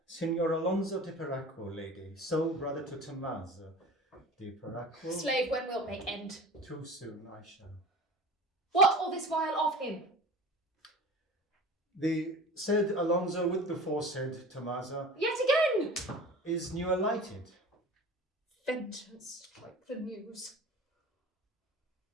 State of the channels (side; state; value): both; normal; correlation 0.38